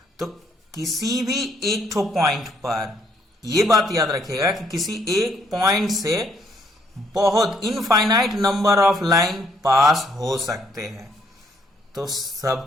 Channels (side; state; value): both; normal; correlation 0.69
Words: तो किसी भी एक ठो पॉइंट पर यह बात याद रखिएगा कि किसी एक पॉइंट से बहुत infinite number of line pass हो सकते हैं। तो